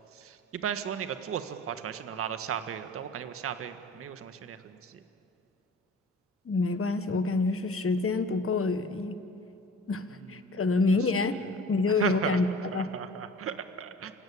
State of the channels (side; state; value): both; normal; correlation 0.44